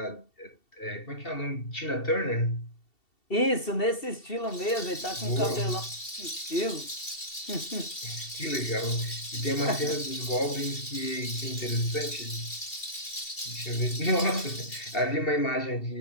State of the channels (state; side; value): late; right; 2.7 ms